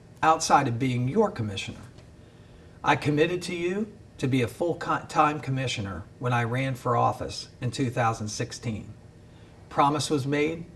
outside of being your commissioner. I committed to you to be a full-time commissioner when I ran for office in 2016. Promise was made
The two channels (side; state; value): both; identical; correlation 1.00